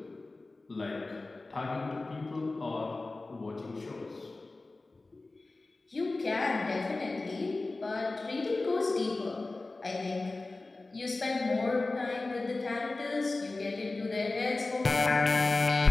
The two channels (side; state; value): right; quieter; 3.3 dB